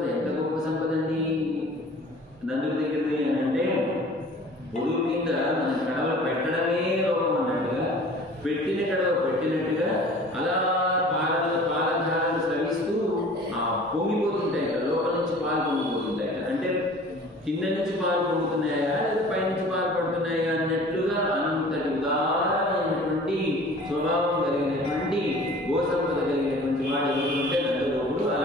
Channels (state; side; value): normal; both; correlation 0.46